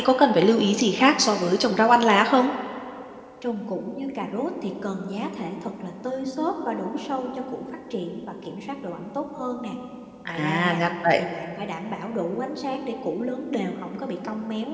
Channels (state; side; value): identical; both; correlation 1.00